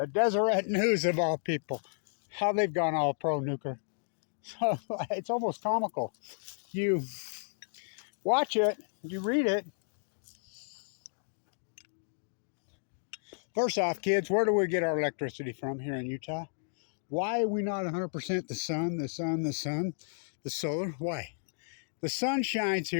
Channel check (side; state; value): right; silent; digital silence